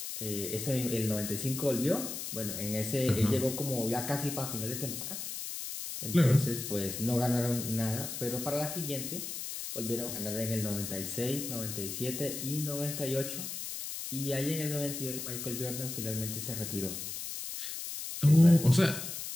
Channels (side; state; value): left; noise; hiss, 6 dB below the sound